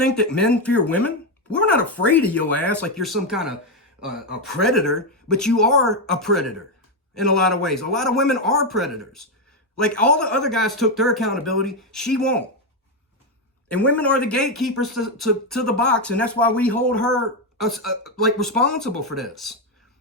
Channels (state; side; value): normal; both; correlation 0.07